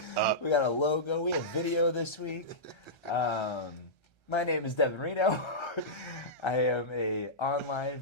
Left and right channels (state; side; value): late; right; 1.3 ms